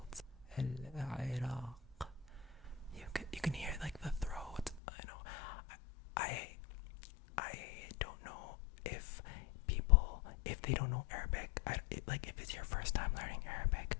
Iraq. You can hear like the throat. I know. I don't know if people, if they don't know Arabic, like if it's your first time learning Arabic,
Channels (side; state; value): right; drops out; at 4.8 s